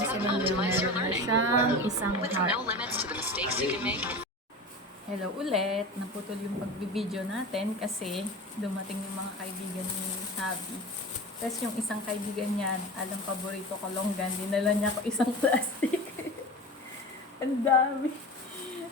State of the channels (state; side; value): normal; both; correlation 0.31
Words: optimize your learning. Siyang isang With heart. no limits to the mistakes you can make. Hello ulit. Naputol yung pagbibideo natin kasi dumating yung mga kaibigan ni Habi. Tapos yung isang kaibigan niya, alam paborito ko longgan, dinala niya ako isang plastic. Ang dami.